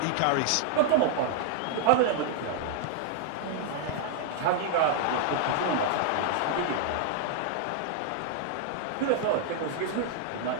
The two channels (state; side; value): different; both; correlation -0.01